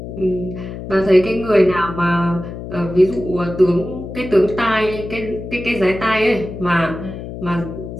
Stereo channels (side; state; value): left; noise; hum, 9 dB below the sound